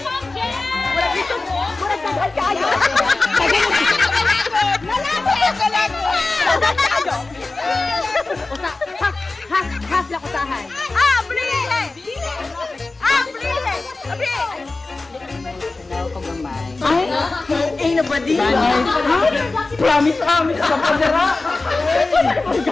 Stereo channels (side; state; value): right; quieter; 3.4 dB